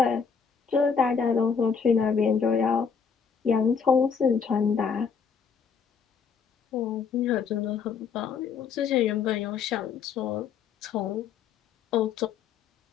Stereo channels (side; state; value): right; quieter; 6.2 dB